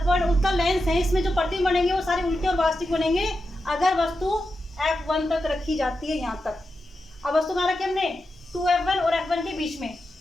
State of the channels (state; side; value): normal; both; correlation 0.89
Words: उत्तल लेंस है, इसमें जो प्रतिबिंब बनेंगे वो सारे उल्टे और वास्तविक बनेंगे अगर वस्तु F1 तक रखी जाती है, यहाँ तक। अब वस्तु कहाँ रखी हमने? 2F1 और F1 के बीच में।